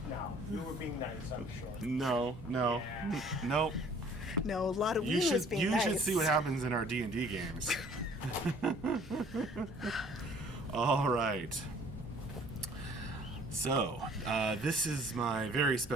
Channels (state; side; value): normal; both; correlation 0.55